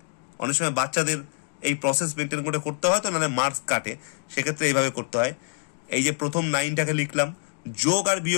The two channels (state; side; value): silent; right; 61 dB below the other